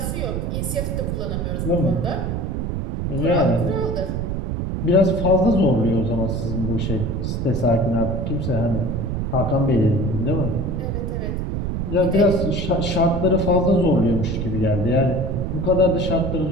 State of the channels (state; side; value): noise; right; rumble, 2 dB below the sound